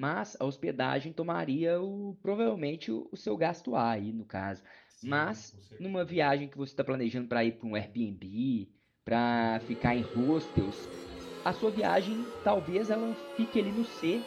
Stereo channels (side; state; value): both; identical; correlation 1.00